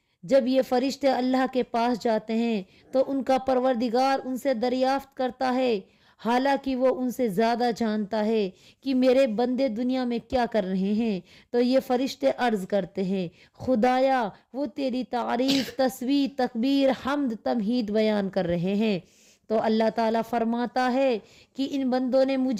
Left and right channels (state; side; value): identical; both; correlation 1.00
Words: جب یہ فرشتے اللہ کے پاس جاتے ہیں تو ان کا پروردگار ان سے دریافت کرتا ہے، حالانکہ وہ ان سے زیادہ جانتا ہے، کہ میرے بندے دنیا میں کیا کر رہے ہیں۔ تو یہ فرشتے عرض کرتے ہیں، خدایا وہ تیری تعریف، تسبیح، تکبیر، حمد، تمہید بیان کر رہے ہیں۔ تو اللہ تعالیٰ فرماتا ہے کہ ان بندوں نے